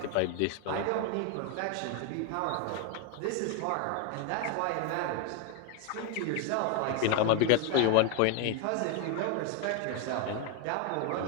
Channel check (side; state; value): both; different; correlation 0.01